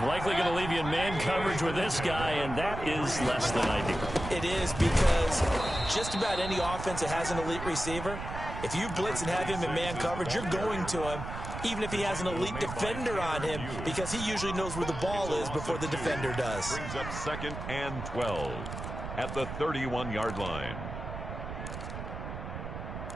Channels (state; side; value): noise; right; rumble, 8 dB below the sound